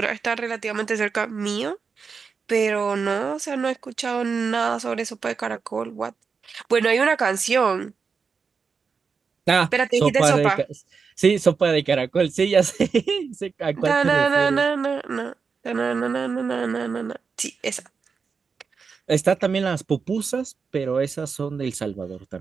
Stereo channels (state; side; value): quieter; left; 5.4 dB